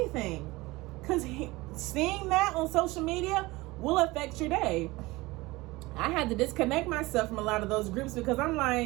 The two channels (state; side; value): quieter; left; 21.1 dB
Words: Because seeing that on social media will affect your day. I had to disconnect myself from a lot of those groups because I'm